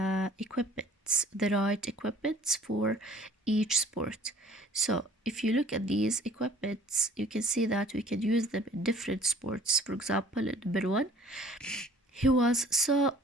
right equipments for each sport. So if you look at these equipments, you can see that we can use them in different sports. For example, in number 1, he was so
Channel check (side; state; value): both; normal; correlation 0.52